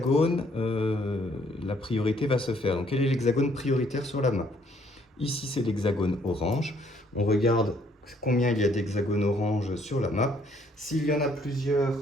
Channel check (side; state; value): both; normal; correlation 0.65